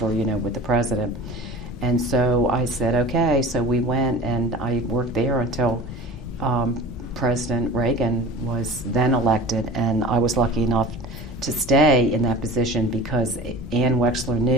with the president. And so I said, okay. So we went, and I worked there until President Reagan was then elected, and I was lucky enough to stay in that position because Ann Wexler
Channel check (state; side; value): normal; both; correlation 0.37